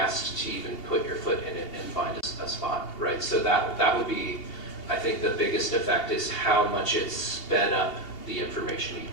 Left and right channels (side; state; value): right; late; 2.8 ms